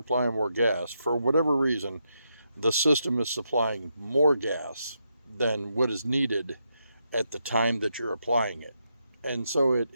more gas, for whatever reason, the system is supplying more gas than what is needed at the time that you're applying it. And so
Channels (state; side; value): inverted; both; correlation -0.82